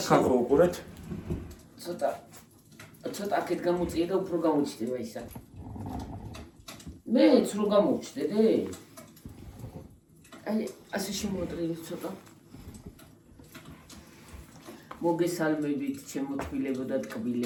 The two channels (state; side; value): identical; both; correlation 1.00